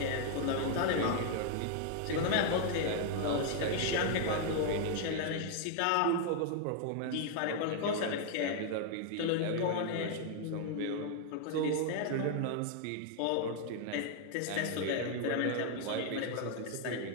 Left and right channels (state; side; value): different; both; correlation 0.00